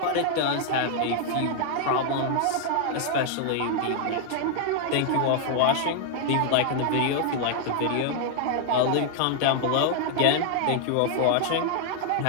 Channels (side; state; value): both; different; correlation 0.00